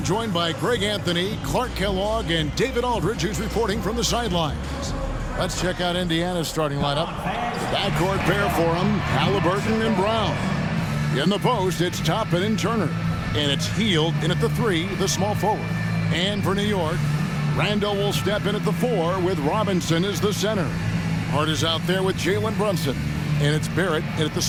joined by Greg Anthony, Clark Kellogg, and David Aldridge, who's reporting from the sidelines. Let's check out Indiana's starting lineup. The backcourt pair for them, Halliburton and Brown. In the post, it's Toppin and Turner. And it's Hield in at the 3, the small forward. And for New York, Randall will step in at the 4 with Robinson as the center. Hart is out there with Jalen Brunson. And it's Barrett in at the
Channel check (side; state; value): both; identical; correlation 1.00